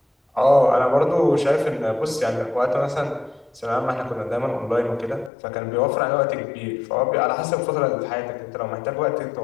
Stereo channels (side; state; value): right; drops out; at 5.3 s